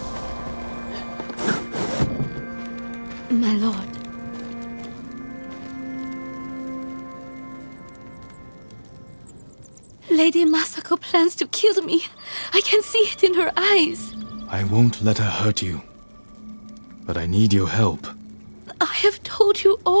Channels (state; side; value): inverted; both; correlation -1.00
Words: My lord. Lady Masako plans to kill me. I can see it in her eyes. I won't let her hurt you. But I need your help. I have told you